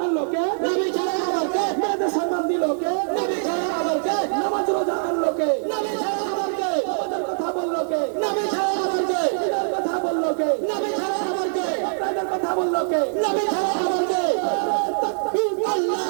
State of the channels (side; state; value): left; silent; digital silence